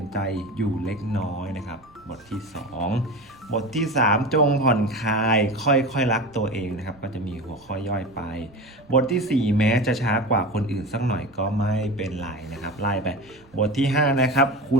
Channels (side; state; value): right; noise; rumble, 28 dB below the sound